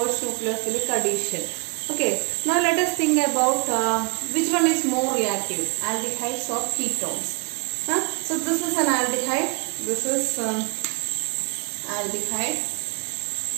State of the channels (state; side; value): quieter; left; 33.2 dB